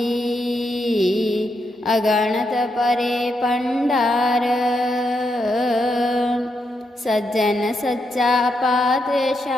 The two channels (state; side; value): normal; both; correlation 0.82